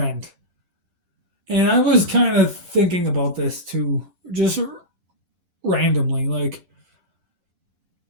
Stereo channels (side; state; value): left; late; 11 ms